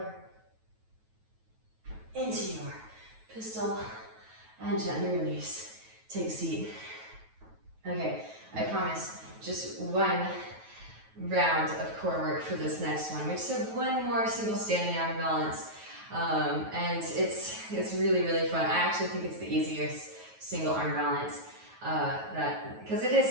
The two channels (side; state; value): left; late; 9.2 ms